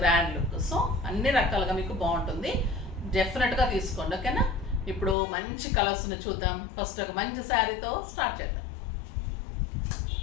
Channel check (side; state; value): right; drops out; at 5.2 s